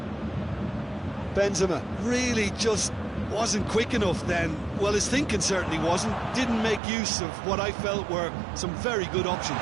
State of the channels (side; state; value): left; drops out; at 6.8 s